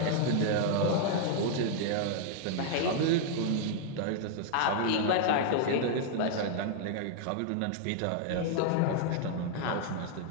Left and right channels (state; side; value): different; both; correlation -0.01